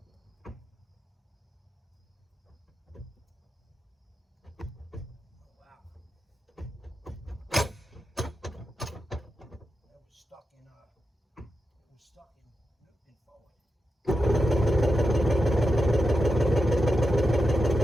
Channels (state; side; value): normal; both; correlation 0.89